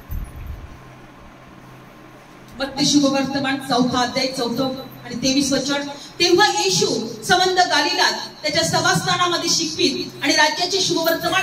मत्ते शुभवर्तमान 4 अध्याय 4 आणि 23 वचन. तेव्हा येशू संबंध गालिलात त्याच्या सभास्थानामध्ये शिकवीत आणि राज्याचे शुभवर्तमान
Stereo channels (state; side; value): identical; both; correlation 1.00